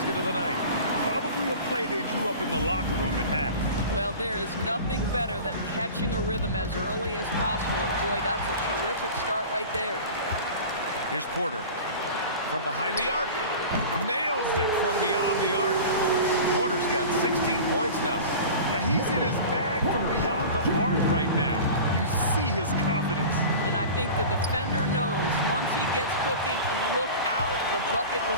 of the night. Probably a play they drew up in the locker room at half. Well, there is nothing better than catching a rhythm as early as possible, and boy, that's a terrific start right there. Here's Porter. From behind the arc. Nails it from beyond the arc. Porter's got 16 points now. Now he's in his bag from beyond the arc right now. You see his confidence. And I think the defender knows once he gets cooking, look out. The bucket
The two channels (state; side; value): inverted; both; correlation -0.36